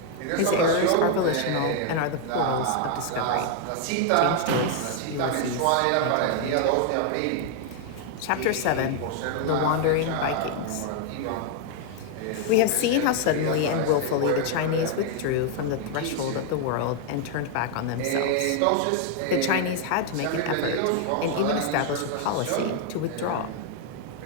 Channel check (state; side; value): different; both; correlation 0.00